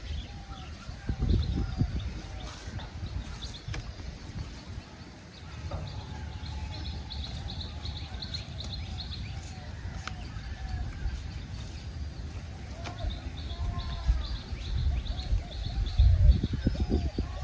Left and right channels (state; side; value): identical; both; correlation 1.00